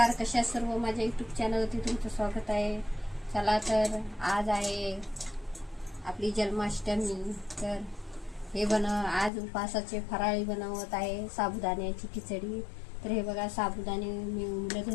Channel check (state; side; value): drops out; right; at 9.3 s